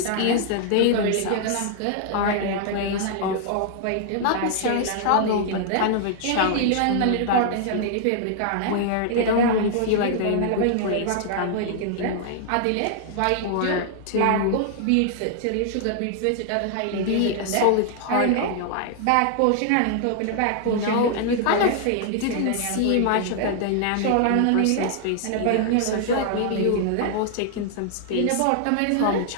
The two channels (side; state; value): both; different; correlation -0.01